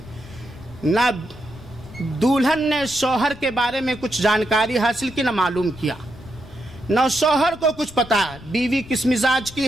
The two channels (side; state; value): left; noise; rumble, 18 dB below the sound